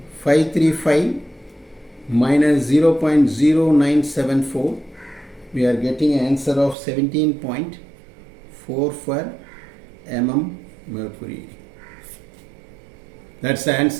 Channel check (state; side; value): drops out; left; at 6.8 s